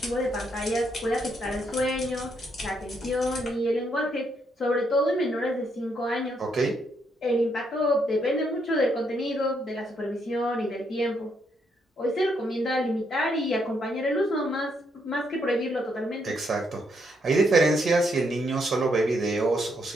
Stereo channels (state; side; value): normal; both; correlation 0.76